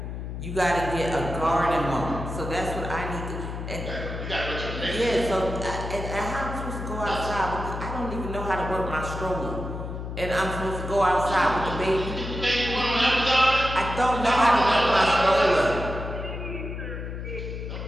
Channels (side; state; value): left; noise; hum, 7 dB below the sound